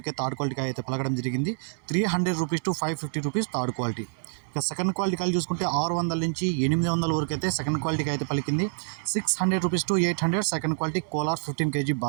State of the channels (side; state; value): left; silent; 60 dB below the other